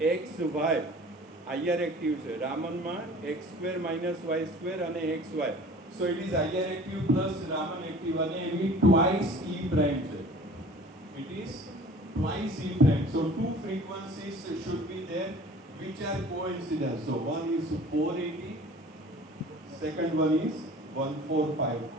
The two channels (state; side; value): normal; both; correlation 0.46